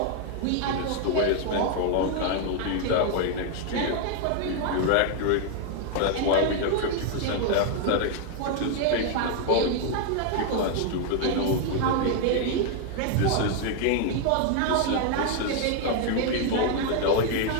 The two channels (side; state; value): both; different; correlation 0.00